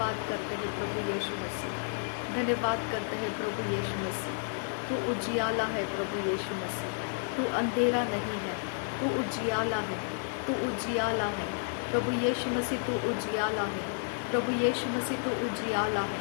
करते हैं प्रभु यीशु मसीह, धन्यवाद करते हैं प्रभु यीशु मसीह। तू उजियाला है प्रभु यीशु मसीह, तू अंधेरा नहीं है, तू उजियाला है, तू उजियाला है प्रभु यीशु मसीह, तू उजियाला है प्रभु यीशु मसीह, तू उजियाला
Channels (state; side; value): silent; right; digital silence